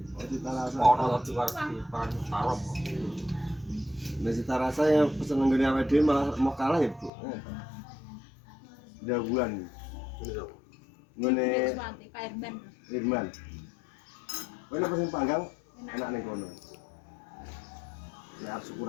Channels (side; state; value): right; drops out; at 7.1 s